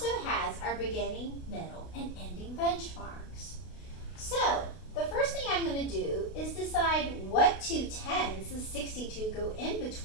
has our beginning, middle, and ending benchmarks. So, the first thing I'm going to do is decide what two tens does 62 go in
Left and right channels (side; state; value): right; late; 32 ms